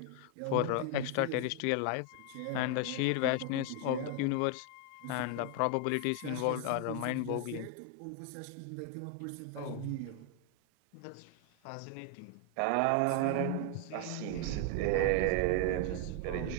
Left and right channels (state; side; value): different; both; correlation 0.00